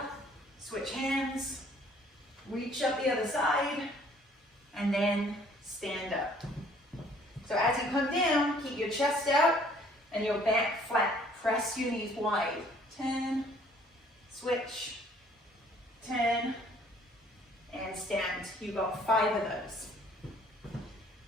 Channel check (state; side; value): normal; both; correlation 0.58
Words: Switch hands, reach up the other side, and then stand up. So as you come down, keep your chest out and your back flat. Press your knees wide. Turn, switch, turn, and stand. You've got 5 of those.